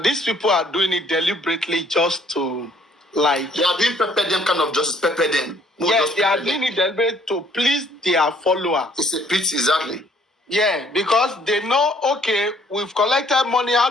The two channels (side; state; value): both; normal; correlation 0.62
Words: these people are doing it deliberately just to, like... They are doing pepper them kind of justice, pepper them. Yes, they are doing it deliberately to please their followers. It's a pity, exactly. Yeah, because they know, okay, we've collected money.